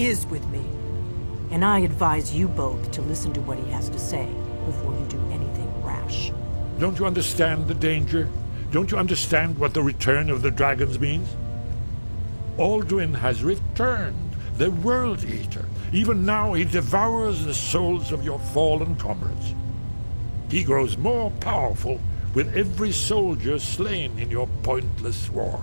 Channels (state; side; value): inverted; both; correlation -1.00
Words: with me. And I advise you both to listen to what he has to say before you do anything rash. Don't you understand the danger? Don't you understand what the return of the dragons means? Alduin has returned, the World Eater. Even now he devours the souls of your fallen comrades. He grows more powerful with every soldier slain in your pointless